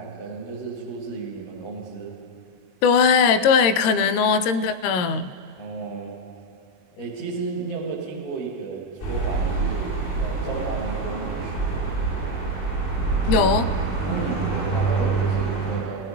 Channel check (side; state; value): right; late; 22 ms